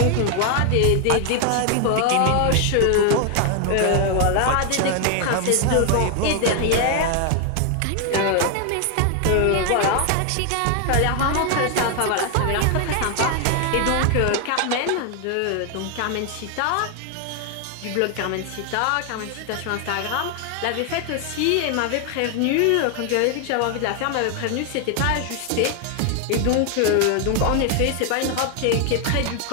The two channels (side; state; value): both; different; correlation 0.00